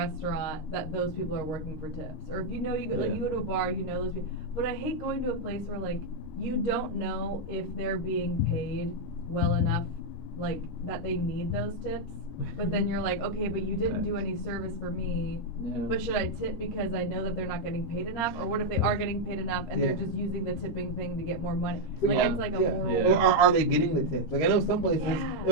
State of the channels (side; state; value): right; late; 13 ms